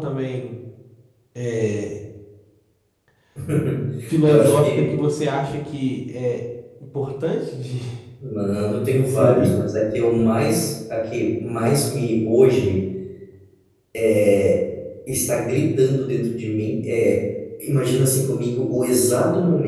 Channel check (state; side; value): identical; both; correlation 1.00